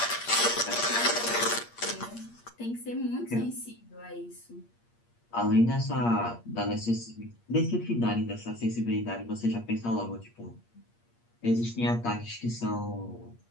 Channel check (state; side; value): late; right; 8.6 ms